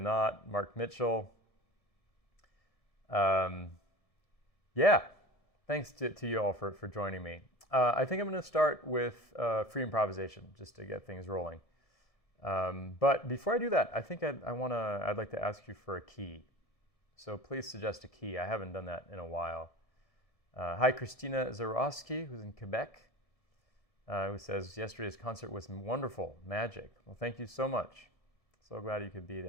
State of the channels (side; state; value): right; late; 1.7 ms